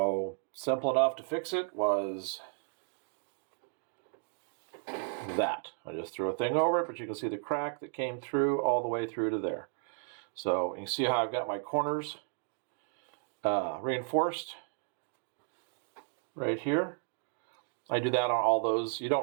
simple enough to fix it was that. I just threw a thing over it, but you can see the crack that came through all the way through to there. So you can see how I've got my corners reinforced right here. I do that on all those. You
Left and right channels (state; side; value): silent; left; 55 dB below the other